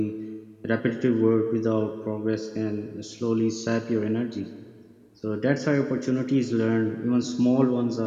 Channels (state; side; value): identical; both; correlation 1.00